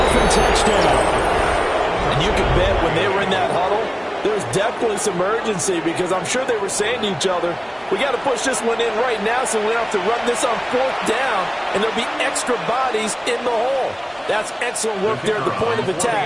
touchdown. And you can bet when they were in that huddle, there's definitely some urgency because I'm sure they were saying to each other, we got to push this one in right now so we don't have to run this on 4th down, and there'll be extra bodies in the hole. That's excellent work there at the point of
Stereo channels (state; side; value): identical; both; correlation 1.00